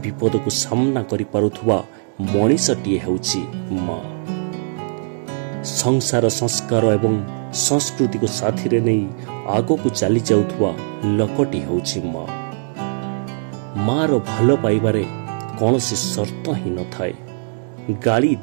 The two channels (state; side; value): silent; left; digital silence